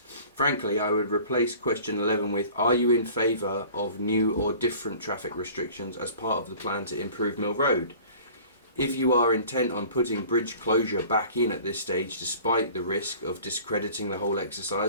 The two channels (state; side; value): inverted; both; correlation -0.46